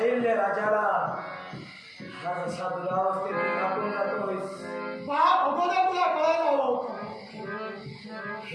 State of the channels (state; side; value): identical; both; correlation 1.00